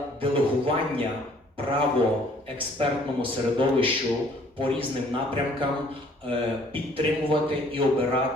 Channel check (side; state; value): both; normal; correlation 0.59